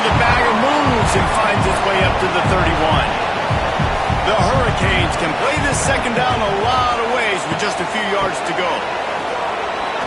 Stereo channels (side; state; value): both; identical; correlation 1.00